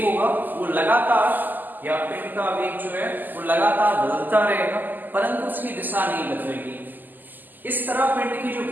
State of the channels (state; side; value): late; left; 0.087 ms